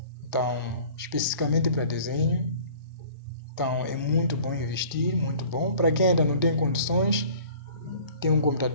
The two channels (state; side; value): inverted; both; correlation -0.49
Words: Então, especificamente para desenho. Então, é muito bom investir, muito bom. Para quem ainda não tem condições, tem um